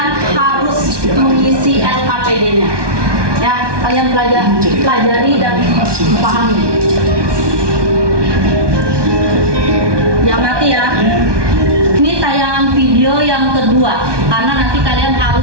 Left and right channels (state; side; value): late; left; 1.2 ms